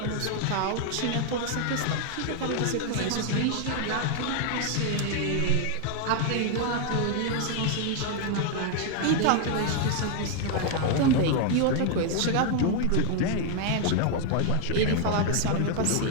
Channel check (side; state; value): both; different; correlation 0.00